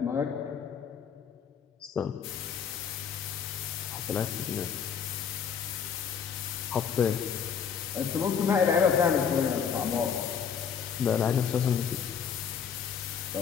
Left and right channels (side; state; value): right; quieter; 7.2 dB